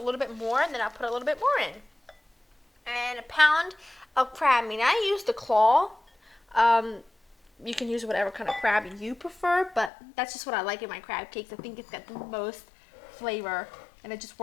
bit more, then I'll put a little bit more in. And 1 pound of crab meat. I use the claw. You can use whatever kind of crab you prefer, but that's just what I like in my crab cakes. I think it's got the most flavor, and it just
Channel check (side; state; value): right; drops out; at 9.9 s